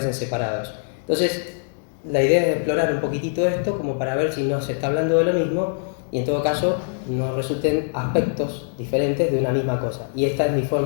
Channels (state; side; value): silent; right; digital silence